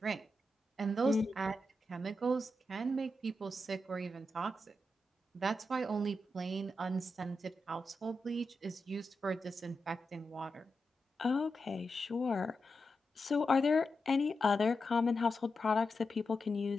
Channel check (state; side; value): normal; both; correlation 0.88